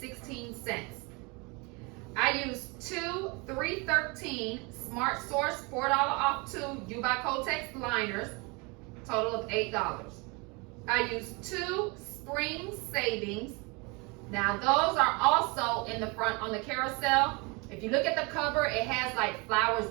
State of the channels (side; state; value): left; quieter; 28.8 dB